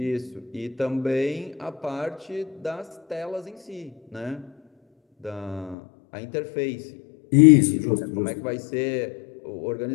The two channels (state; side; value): drops out; right; at 5.8 s